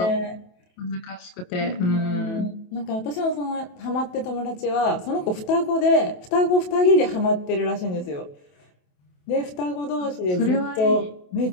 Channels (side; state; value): right; late; 28 ms